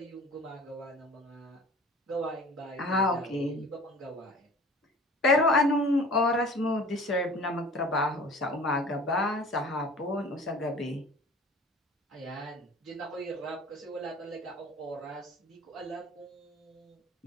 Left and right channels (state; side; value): normal; both; correlation 0.44